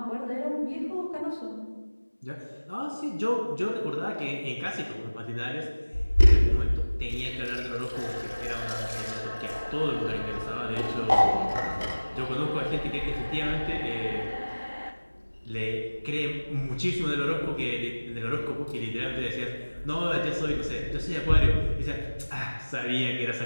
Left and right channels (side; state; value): both; inverted; correlation -1.00